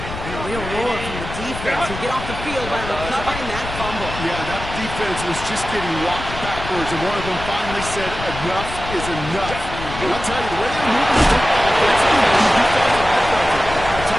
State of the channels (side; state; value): left; noise; rumble, 9 dB below the sound